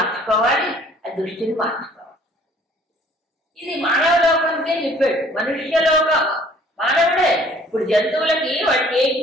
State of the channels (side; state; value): both; normal; correlation 0.56